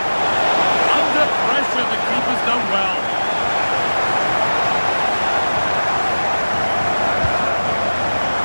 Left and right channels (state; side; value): inverted; both; correlation -1.00